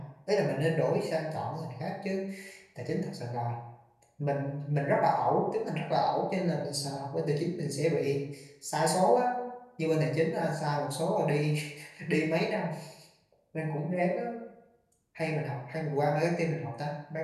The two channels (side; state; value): both; identical; correlation 1.00